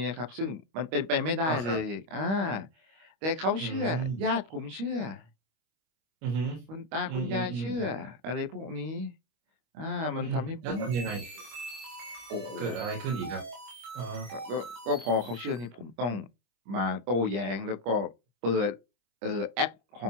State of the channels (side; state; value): left; late; 25 ms